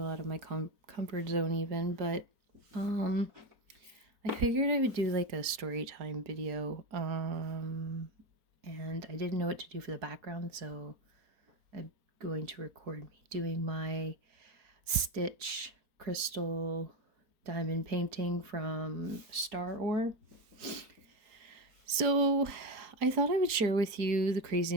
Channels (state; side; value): late; left; 4.4 ms